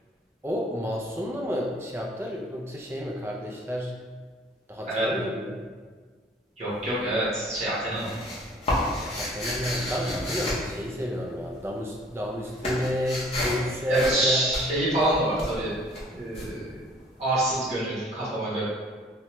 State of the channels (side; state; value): both; normal; correlation 0.53